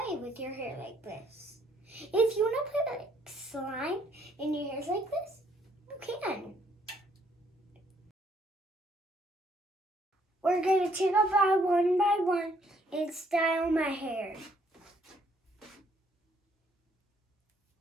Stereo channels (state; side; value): normal; both; correlation 0.67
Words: with your hair like this. If you want to put like slime in your hair like this, you can. We're gonna take it by one and style my hair.